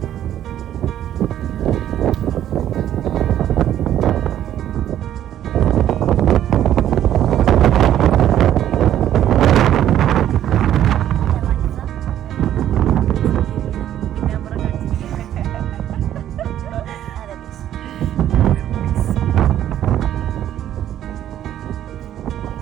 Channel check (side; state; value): left; quieter; 11.4 dB